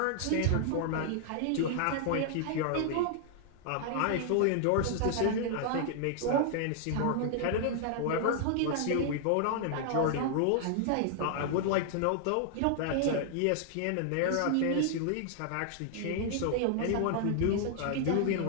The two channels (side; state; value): both; different; correlation 0.00